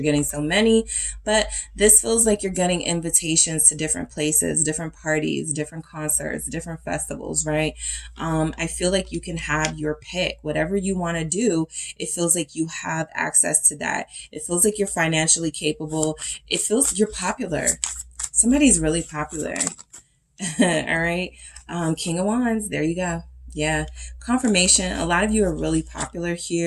getting so many. But this feels like you're getting invitations to different places, different parties, different concerts, different festivals, right? I feel like you can have your pick. Whatever you want to do, it feels like you have access to that. It feels like you're financially capable. It feels you're popular. Somebody's really popular. All right. King of Wands. There you go. Yeah. Confirmation. A lot of you are really popular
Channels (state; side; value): identical; both; correlation 1.00